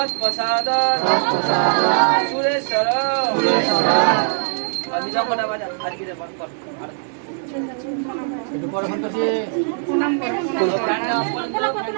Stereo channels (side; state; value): left; silent; digital silence